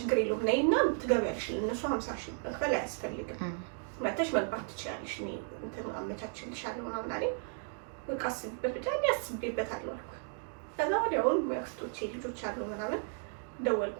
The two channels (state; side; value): silent; left; 55 dB below the other